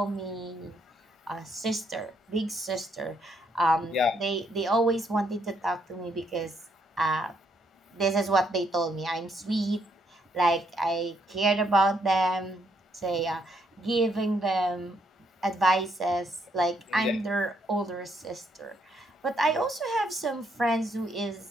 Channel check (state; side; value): normal; both; correlation 0.73